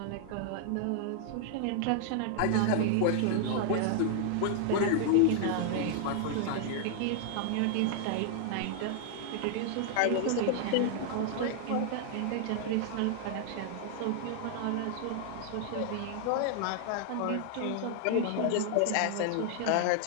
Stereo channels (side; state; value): both; different; correlation 0.00